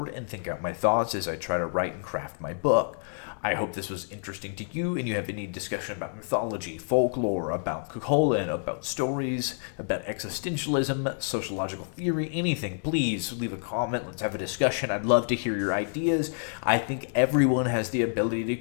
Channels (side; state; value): right; silent; digital silence